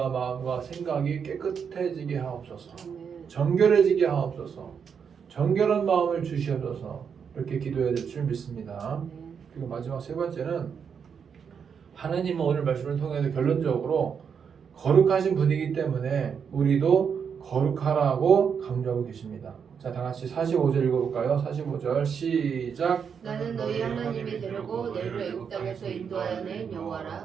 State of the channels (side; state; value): left; quieter; 6.9 dB